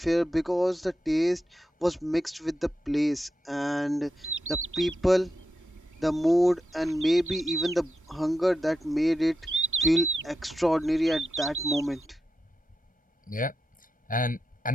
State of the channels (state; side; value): normal; both; correlation 0.87